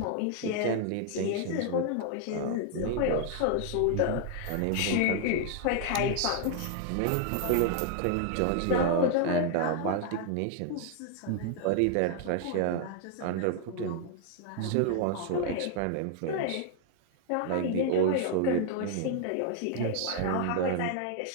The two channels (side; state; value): both; different; correlation 0.00